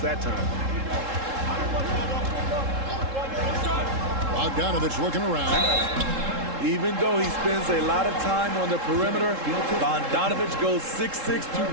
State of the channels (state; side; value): late; left; 3.7 ms